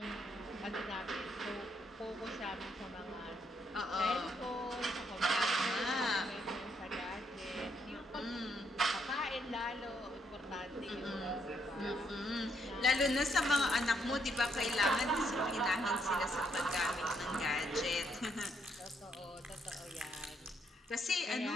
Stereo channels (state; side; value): normal; both; correlation 0.74